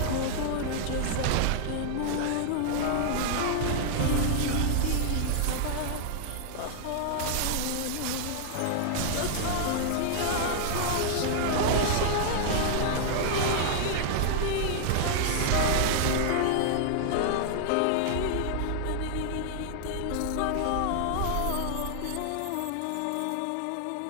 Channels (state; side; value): different; both; correlation -0.01